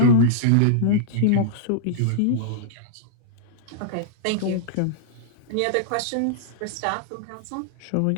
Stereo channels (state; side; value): different; both; correlation -0.02